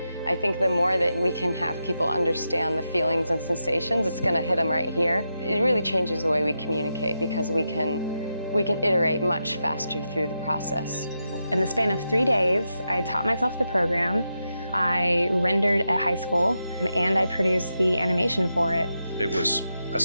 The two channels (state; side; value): inverted; both; correlation -0.86